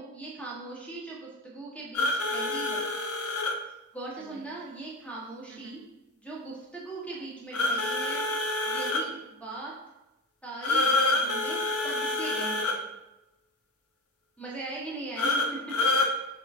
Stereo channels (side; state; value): both; normal; correlation 0.25